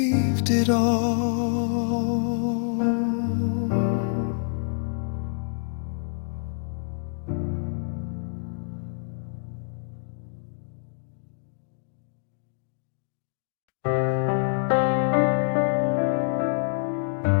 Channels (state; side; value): silent; right; 60 dB below the other